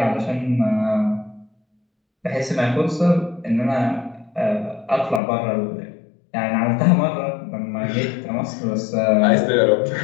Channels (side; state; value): right; drops out; at 5.2 s